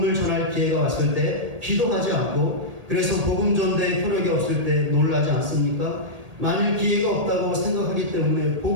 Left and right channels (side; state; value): left; late; 1.8 ms